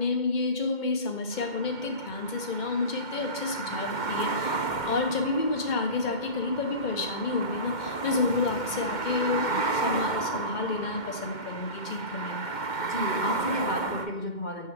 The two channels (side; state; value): right; late; 2.1 ms